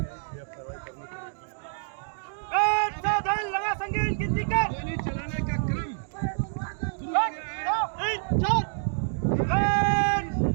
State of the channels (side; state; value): left; silent; digital silence